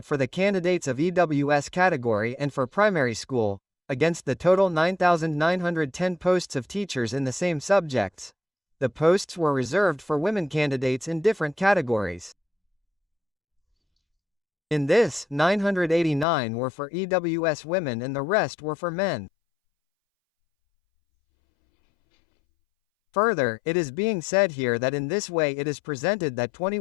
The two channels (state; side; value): drops out; right; at 16.2 s